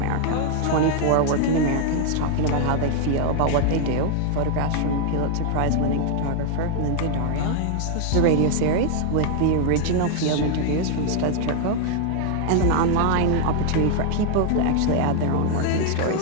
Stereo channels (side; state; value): both; different; correlation 0.00